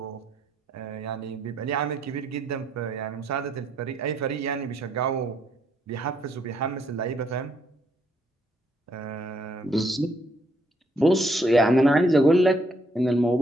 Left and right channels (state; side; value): normal; both; correlation 0.72